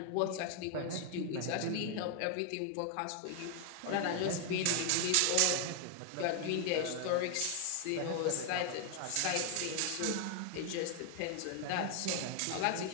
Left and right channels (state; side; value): different; both; correlation 0.00